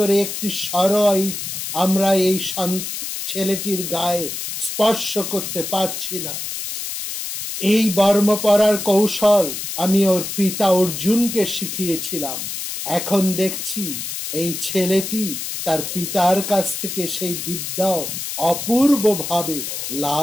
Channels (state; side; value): noise; left; hiss, 5 dB below the sound